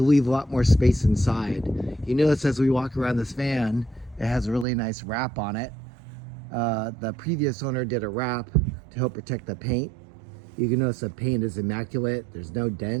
leave a lot more space inside. You notice as we walk around this van, it has a really nice wrap on it. The previous owner did a wrap to help protect the paint. You can notice the paint is immaculate. There's no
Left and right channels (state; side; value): drops out; left; at 4.7 s